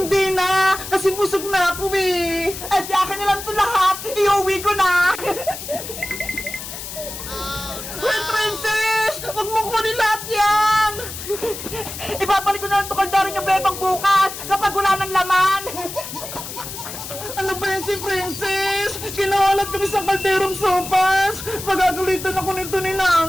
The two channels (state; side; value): noise; left; hiss, 9 dB below the sound